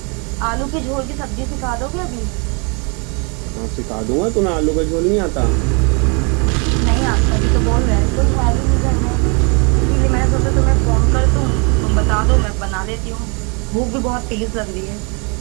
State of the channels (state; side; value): quieter; left; 33.5 dB